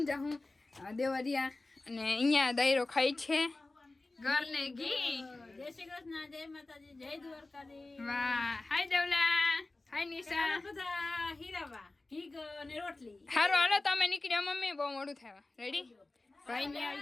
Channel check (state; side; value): quieter; right; 3.1 dB